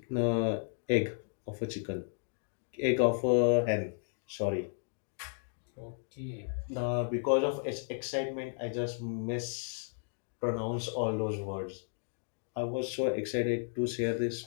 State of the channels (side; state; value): right; silent; digital silence